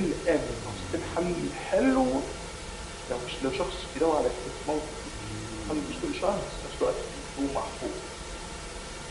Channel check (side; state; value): both; identical; correlation 1.00